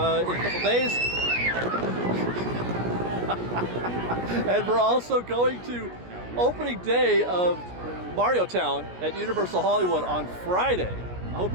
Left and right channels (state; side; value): late; left; 17 ms